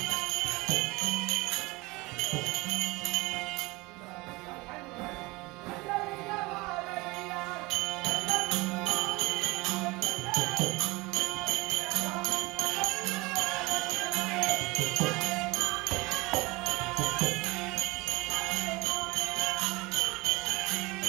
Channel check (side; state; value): left; quieter; 23.0 dB